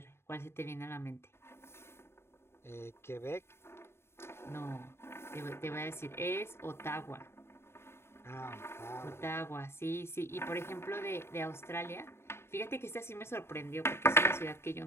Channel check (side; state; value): right; late; 0.12 ms